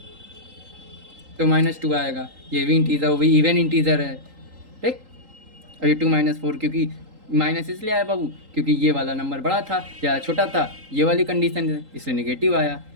तो -2 आएगा, ये भी इंटीजर, वो भी इवन इंटीजर है, ठीक। और ये 2 - 4 क्योंकि माइनस इसलिए आया बाबू क्योंकि ये वाला नंबर बड़ा था या छोटा था, ये वाली कंडीशन है, इसलिए नेगेटिव आया।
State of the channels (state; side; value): late; left; 3.8 ms